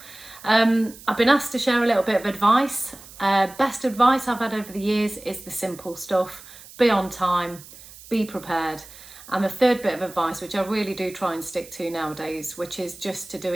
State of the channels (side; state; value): right; noise; hiss, 19 dB below the sound